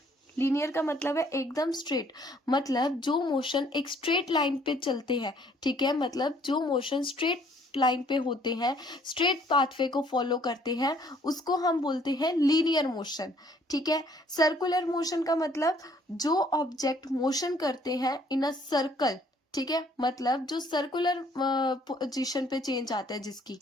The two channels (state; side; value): normal; both; correlation 0.62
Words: लीनियर का मतलब है एकदम स्ट्रेट. मतलब जो मोशन एक स्ट्रेट लाइन पे चलते हैं. ठीक है. मतलब जो मोशन स्ट्रेट लाइन पे होते हैं, स्ट्रेट पाथवे को फॉलो करते हैं, उसको हम बोलते हैं लीनियर मोशन. ठीक है. सर्कुलर मोशन का मतलब जो ऑब्जेक्ट मोशन करते हैं इन अ सर्कल. ठीक है. मतलब जो सर्कुलर पोजीशन पे चेंज आता है जिसकी,